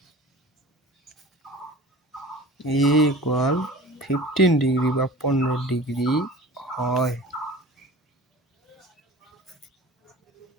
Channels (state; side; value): normal; both; correlation 0.40